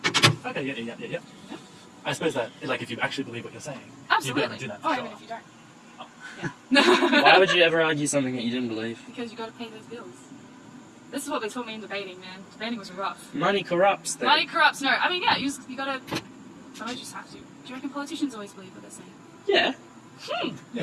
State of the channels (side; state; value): both; identical; correlation 1.00